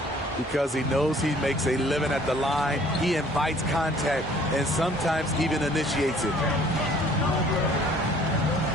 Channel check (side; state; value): both; normal; correlation 0.56